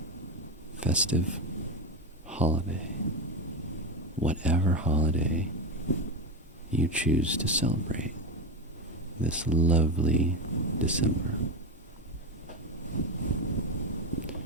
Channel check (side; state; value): both; normal; correlation 0.15